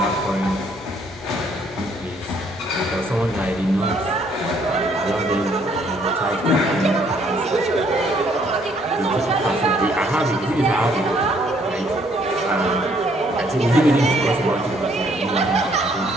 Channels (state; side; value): normal; both; correlation 0.65